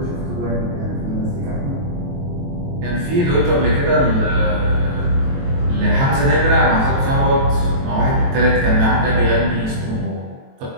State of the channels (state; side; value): late; left; 23 ms